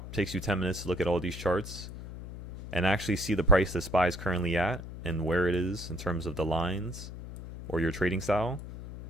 it takes you 10 minutes to look at all these charts and actually see the price the SPY is currently at and where it is in terms of the lines or your trading style.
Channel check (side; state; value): left; noise; hum, 10 dB below the sound